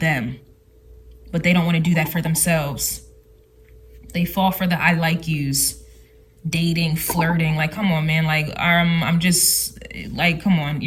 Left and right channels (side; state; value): both; identical; correlation 1.00